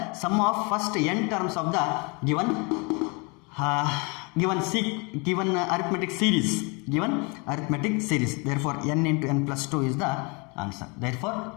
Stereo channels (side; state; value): right; quieter; 30.8 dB